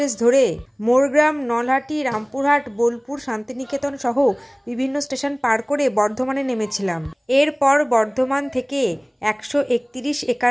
ধরে মোরগ্রাম, নলহাটি, রামপুরহাট, বোলপুর, শান্তিনিকেতন সহ বিভিন্ন স্টেশন পার করে বর্ধমানে নেমেছিলাম। এরপর বর্ধমান থেকে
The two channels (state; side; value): identical; both; correlation 1.00